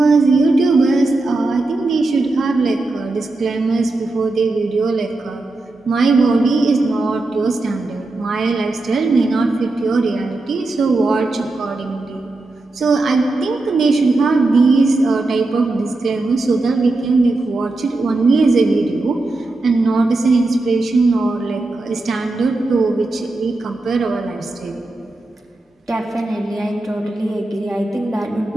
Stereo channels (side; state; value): left; quieter; 3.0 dB